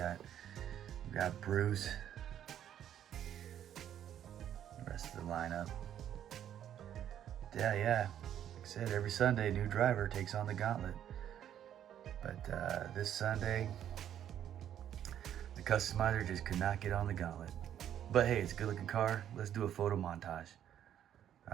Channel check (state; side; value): quieter; left; 10.4 dB